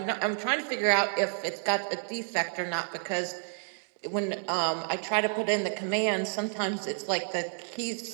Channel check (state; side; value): silent; left; digital silence